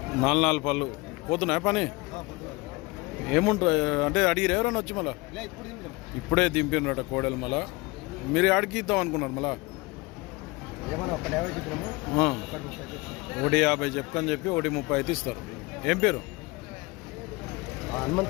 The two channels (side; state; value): right; quieter; 24.3 dB